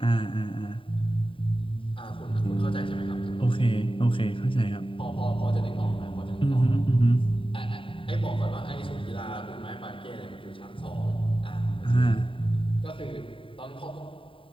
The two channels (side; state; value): right; late; 0.25 ms